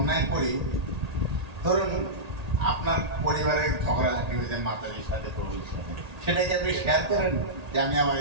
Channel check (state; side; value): late; left; 1.8 ms